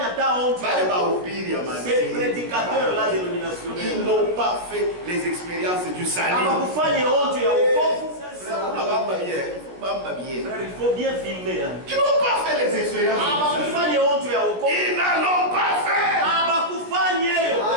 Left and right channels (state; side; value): late; left; 17 ms